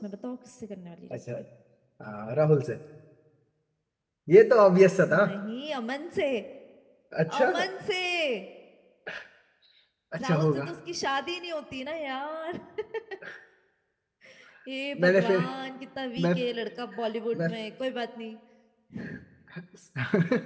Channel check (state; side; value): identical; both; correlation 1.00